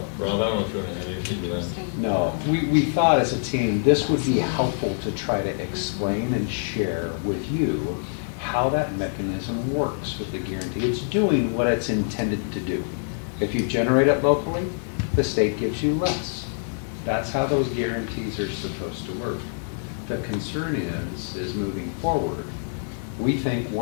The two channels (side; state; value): right; silent; digital silence